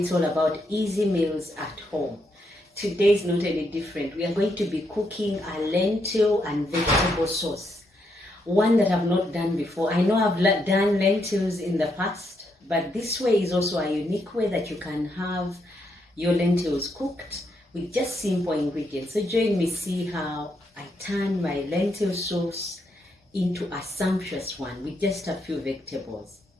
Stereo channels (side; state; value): both; normal; correlation 0.78